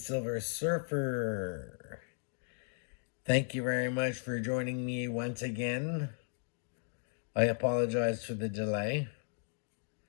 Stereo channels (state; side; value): silent; right; digital silence